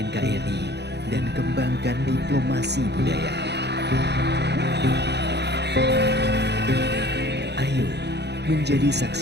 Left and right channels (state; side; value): late; left; 0.49 ms